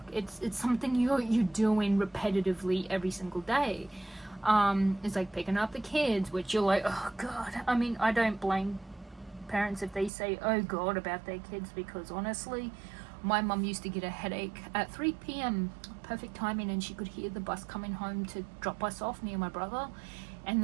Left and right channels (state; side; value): drops out; left; at 10.1 s